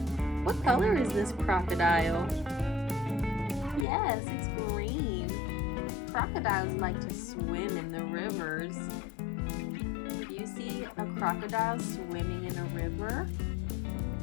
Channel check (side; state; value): right; drops out; at 3.9 s